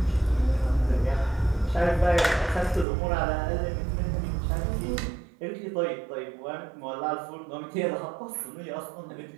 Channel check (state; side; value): drops out; left; at 2.9 s